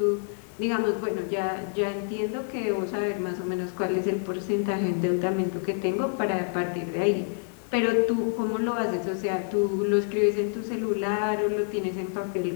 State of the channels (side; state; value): right; silent; 60 dB below the other